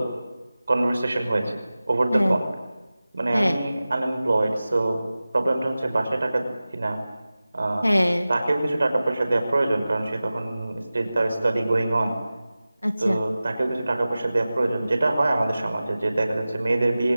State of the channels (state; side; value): inverted; both; correlation -0.96